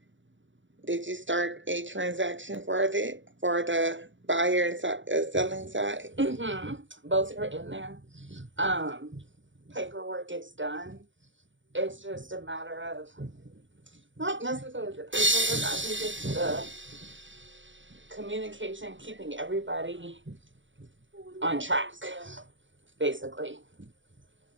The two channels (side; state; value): left; late; 0.55 ms